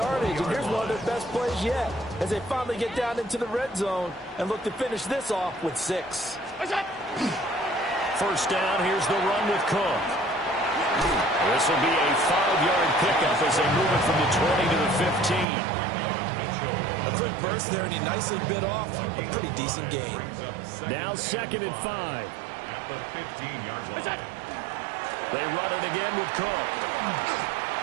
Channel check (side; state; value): left; drops out; at 15.5 s